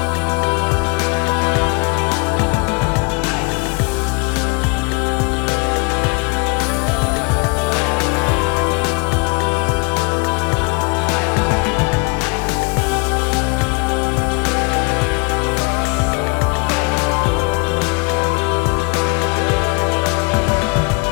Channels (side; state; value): right; quieter; 30.8 dB